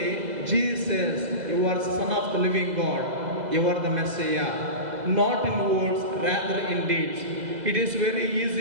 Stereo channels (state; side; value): late; left; 2.0 ms